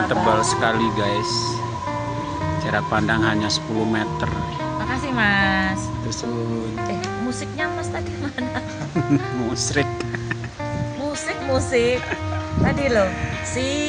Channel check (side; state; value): both; identical; correlation 1.00